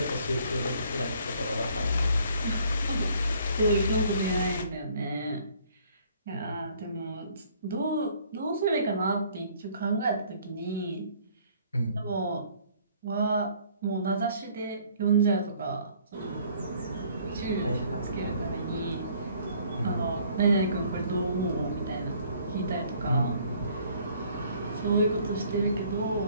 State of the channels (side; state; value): both; inverted; correlation -0.59